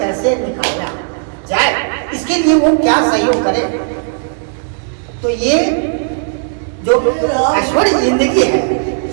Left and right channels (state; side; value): silent; left; 63 dB below the other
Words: निकाला जाए, इसके लिए वो क्या सहयोग करे। तो ये जो ऐश्वर्य जिंदगी है,